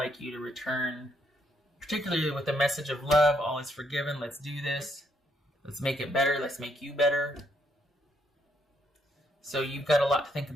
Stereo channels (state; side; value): normal; both; correlation 0.73